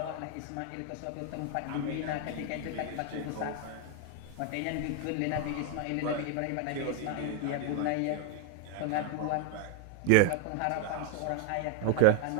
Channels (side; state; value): both; different; correlation 0.01